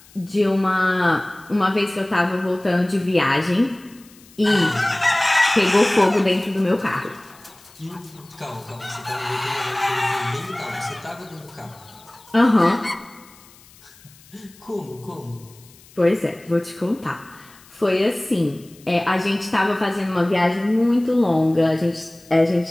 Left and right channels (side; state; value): left; noise; hiss, 25 dB below the sound